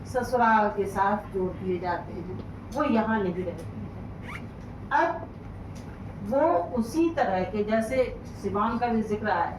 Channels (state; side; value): identical; both; correlation 1.00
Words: ससुराल के साथ जोड़ दिए जाते हैं, वो यहाँ नहीं रहती है। अब वो उसी तरह के, जैसे सिवान का भी जिक्र आया,